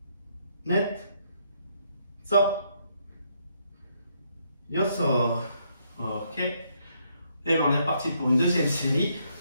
net, sort, yo sort. Ok. Et ben on est parti pour une deuxième série.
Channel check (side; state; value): both; inverted; correlation -0.73